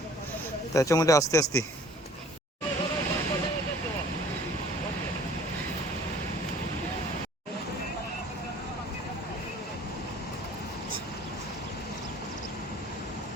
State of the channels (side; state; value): both; normal; correlation 0.51